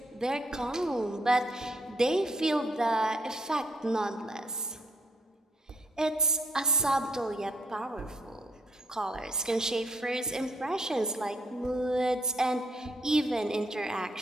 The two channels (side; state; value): both; normal; correlation 0.71